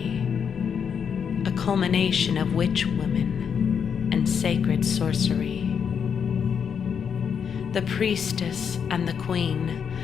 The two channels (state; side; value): quieter; right; 7.1 dB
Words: A culmination of witch women and sacred sorcery. The priestess and the queen